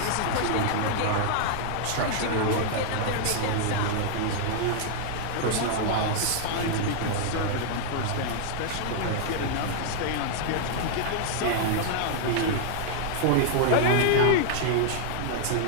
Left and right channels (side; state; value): both; different; correlation -0.01